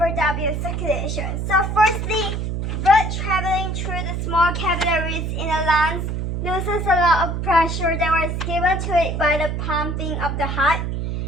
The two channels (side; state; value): right; noise; hum, 2 dB below the sound